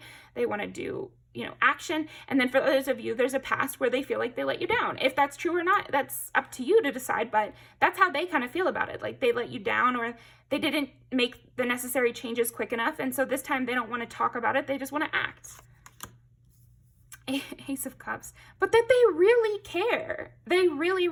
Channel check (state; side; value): identical; both; correlation 1.00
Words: They want to do, you know, action. And then for those of you, there's a past where they feel like they let you down. If that's true or not, that's up to you to decide, but that's how they kind of feel about it. Like they let you down, or they didn't make the necessary changes quick enough. And so this time they don't want to talk about it. They just want to act. Ace of Cups. But that they really care. They really,